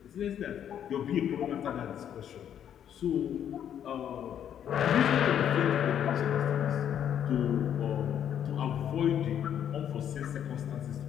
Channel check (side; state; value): right; quieter; 9.5 dB